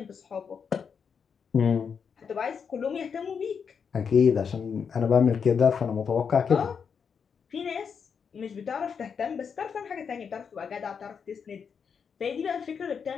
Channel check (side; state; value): right; quieter; 6.5 dB